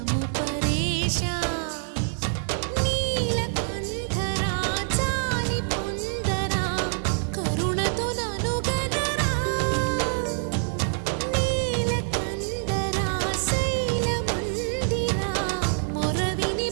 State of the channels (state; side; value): silent; left; digital silence